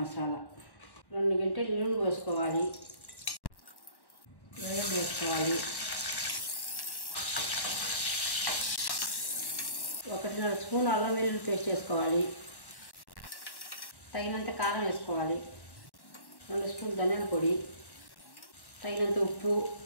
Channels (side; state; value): right; late; 1.1 ms